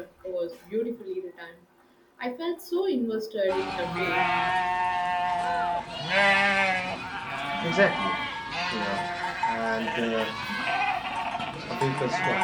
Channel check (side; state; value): both; identical; correlation 1.00